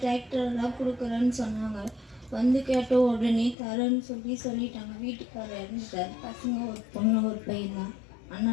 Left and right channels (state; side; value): drops out; right; at 3.6 s